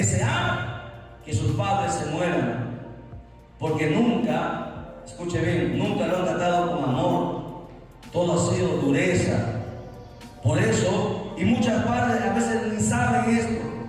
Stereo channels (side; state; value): both; identical; correlation 1.00